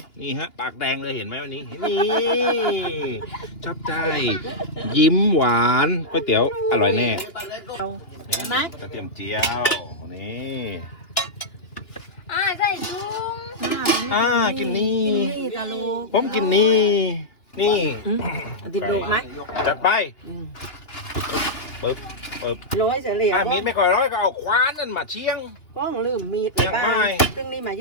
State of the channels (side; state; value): right; late; 3.0 ms